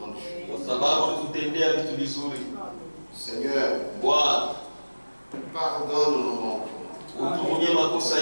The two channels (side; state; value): both; inverted; correlation -1.00